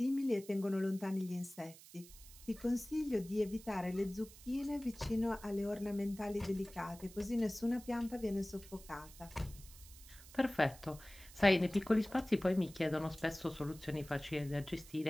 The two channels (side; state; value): right; noise; hiss, 19 dB below the sound